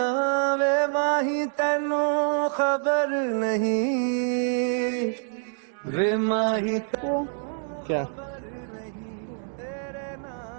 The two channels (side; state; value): left; silent; 61 dB below the other